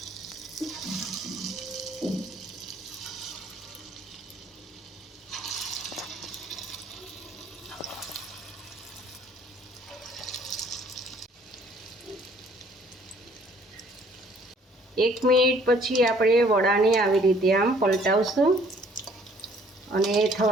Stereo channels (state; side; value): normal; both; correlation 0.59